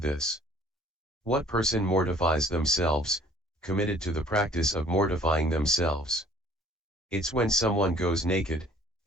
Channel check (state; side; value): normal; both; correlation 0.55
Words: this. What person mortifies themselves, committed to the practice of mortifying themselves? It's when someone goes naked,